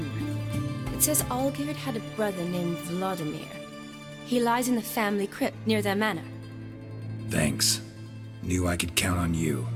It says Olgierd had a brother named Vladimir. He lies in the family crypt near their manor. Thanks. Knew I could count on you.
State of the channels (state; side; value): identical; both; correlation 1.00